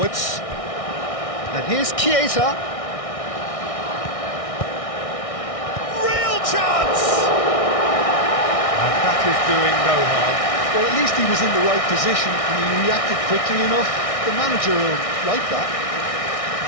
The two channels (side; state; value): right; late; 1.6 ms